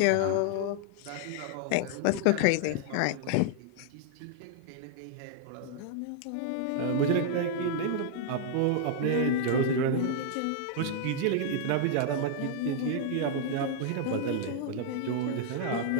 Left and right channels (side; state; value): both; different; correlation -0.01